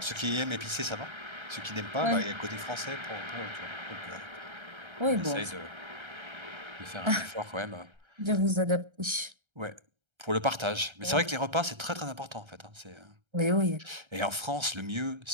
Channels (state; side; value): late; left; 1.3 ms